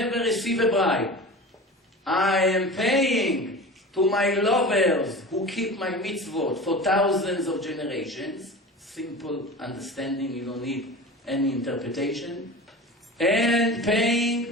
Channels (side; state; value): both; normal; correlation 0.34